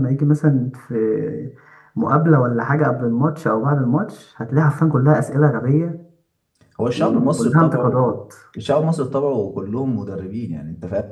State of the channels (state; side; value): identical; both; correlation 1.00